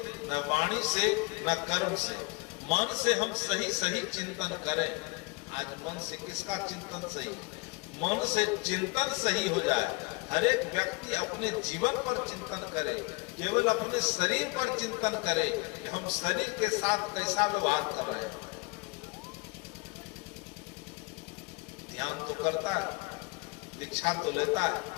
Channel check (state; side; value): quieter; right; 28.0 dB